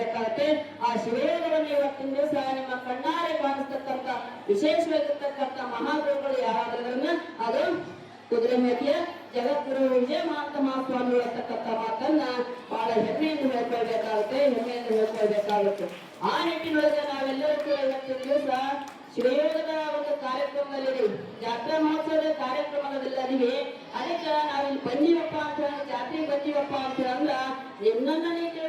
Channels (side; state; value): both; identical; correlation 1.00